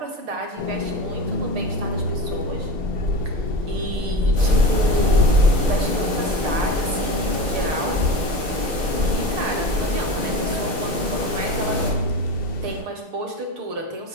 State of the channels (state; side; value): late; left; 6.6 ms